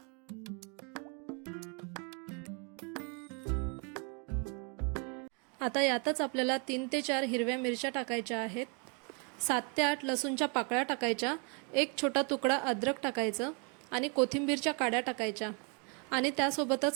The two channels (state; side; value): quieter; left; 35.4 dB